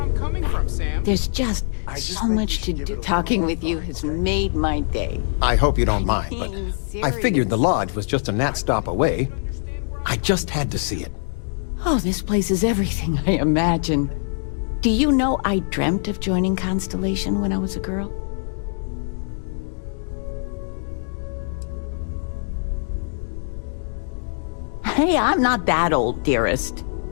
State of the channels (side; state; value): right; silent; digital silence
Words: I'm coming from, Sam. There's just so much to do. Talking with you has made my day. I hope you don't mind, but Being I figured the serious. lodge was just a gnat stop away. I just had to see it. Oh, this place is everything I imagined. Do you know I dreamt of joining Constellation when I was a girl? Hey, I'm not that old, dearest.